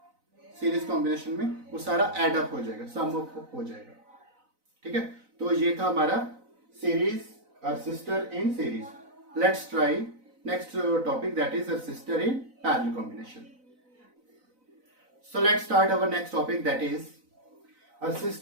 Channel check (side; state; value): left; late; 4.0 ms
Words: सीरीज कॉम्बिनेशन में वो सारा एड अप हो जाएगा, सम अप हो जाएगा। ठीक है, तो ये था हमारा series resistor in series. Let's try next topic that is resistor in parallel combination. So let's start our next topic that is